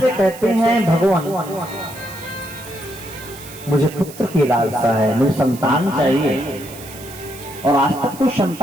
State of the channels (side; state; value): right; noise; hiss, 17 dB below the sound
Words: कहते हैं, भगवान मुझे पुत्र की लालसा है, मुझे संतान चाहिए और आज तक कोई